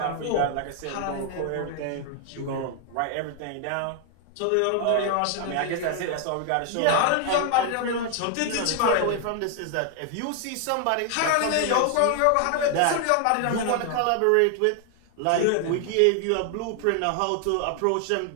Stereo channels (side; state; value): both; different; correlation 0.00